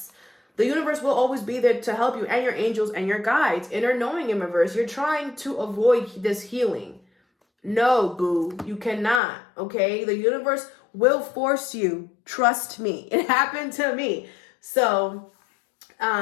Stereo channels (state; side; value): drops out; right; at 9.2 s